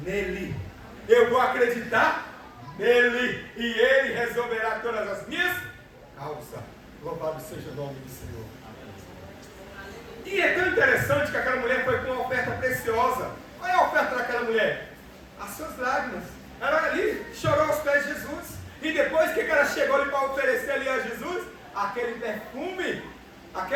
nele. Eu vou acreditar nele. E Ele resolverá todas as minhas causas. Louvado seja o nome do Senhor. E é tão interessante que aquela mulher foi com uma oferta preciosa. Qual é a oferta daquela mulher? As suas lágrimas. Ela ali chorou aos pés de Jesus. E depois que ela chegou ali para oferecer ali a Jesus? Aquele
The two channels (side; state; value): both; identical; correlation 1.00